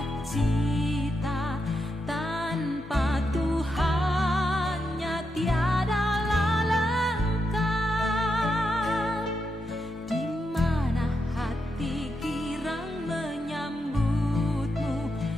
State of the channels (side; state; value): both; normal; correlation 0.84